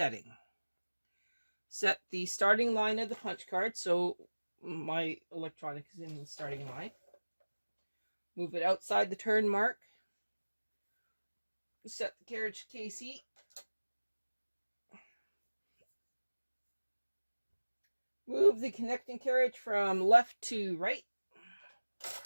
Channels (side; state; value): both; inverted; correlation -1.00